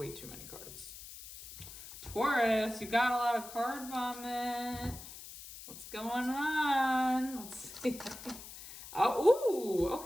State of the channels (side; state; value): left; noise; hiss, 14 dB below the sound